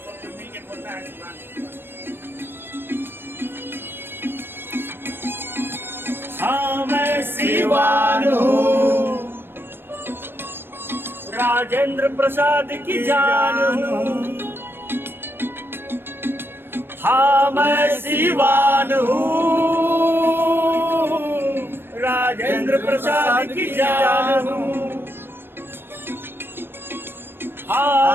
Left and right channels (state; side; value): late; left; 0.10 ms